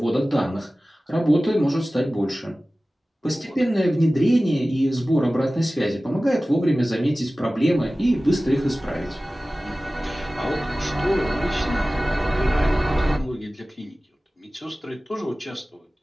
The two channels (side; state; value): both; normal; correlation 0.97